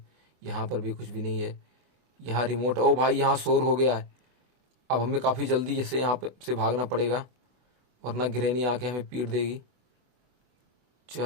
यहाँ पर भी कुछ भी नहीं है। यहाँ रिमोट, ओ भाई यहाँ शोर हो गया है। अब हमें काफ़ी जल्दी से यहाँ पे से भागना पड़ेगा, वरना गिरैनी आके हमें पीट देगी।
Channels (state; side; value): late; left; 24 ms